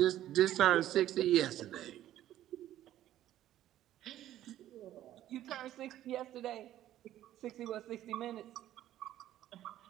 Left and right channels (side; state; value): left; quieter; 12.9 dB